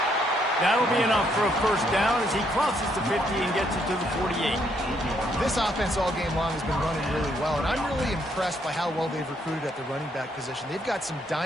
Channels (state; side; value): normal; both; correlation 0.72